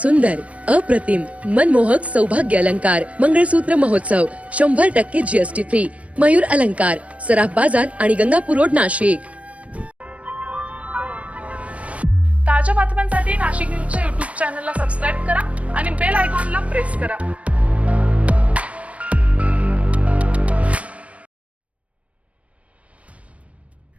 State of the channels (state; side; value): late; left; 0.065 ms